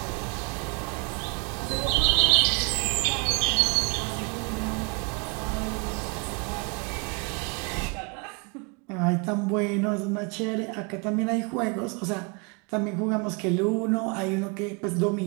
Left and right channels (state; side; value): quieter; left; 33.3 dB